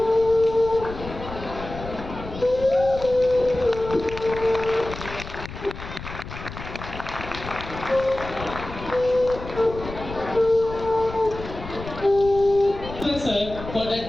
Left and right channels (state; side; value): noise; left; rumble, 11 dB below the sound